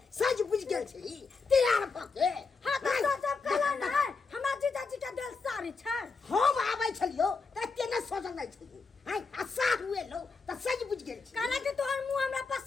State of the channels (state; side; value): quieter; right; 4.5 dB